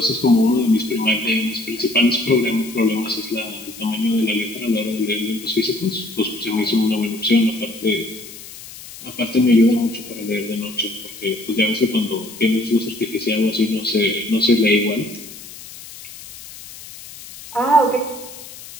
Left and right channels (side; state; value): left; noise; hiss, 15 dB below the sound